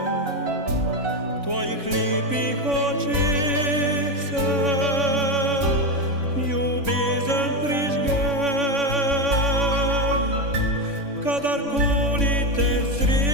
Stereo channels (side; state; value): left; late; 3.5 ms